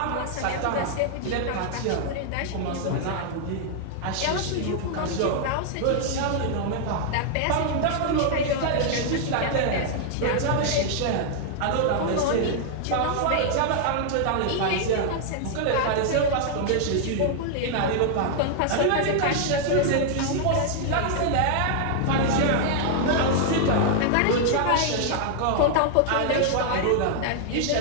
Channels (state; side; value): different; both; correlation 0.00